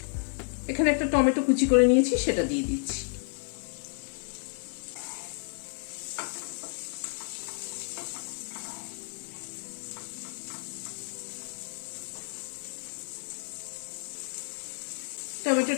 এখানে একটা টমেটো কুচি করে নিয়েছি, সেটা দিয়ে দিচ্ছি।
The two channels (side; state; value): right; silent; digital silence